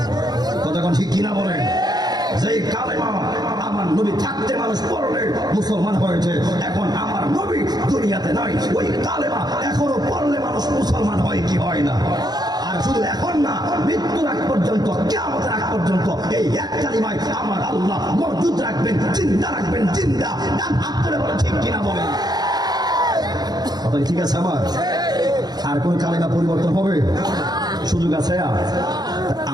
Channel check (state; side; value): late; left; 0.19 ms